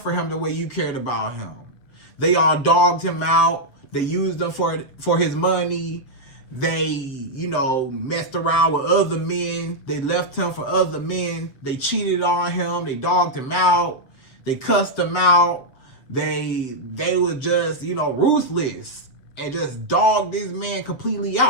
him the way you cared about him. They all dogged him out. They used him for his money. They, you know, messed around with other men. They left him for other men. They cheated on him. They dogged him out. They cussed him out. They were just, you know, ruthless and just dogged this man completely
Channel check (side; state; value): right; late; 7.7 ms